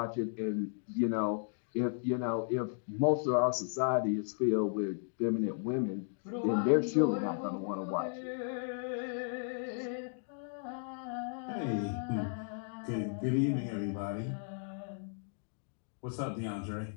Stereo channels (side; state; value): right; silent; digital silence